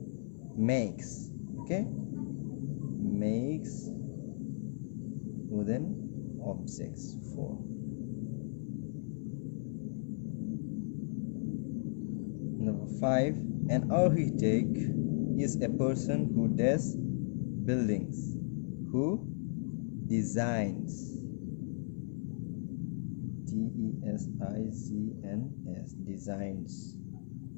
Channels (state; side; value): silent; right; 54 dB below the other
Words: Makes. Okay, makes wooden objects. 4. Number 5, an architect is a person who does buildings, who designs. DESIGNS, designs.